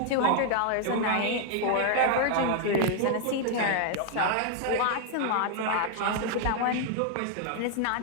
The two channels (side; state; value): both; different; correlation 0.00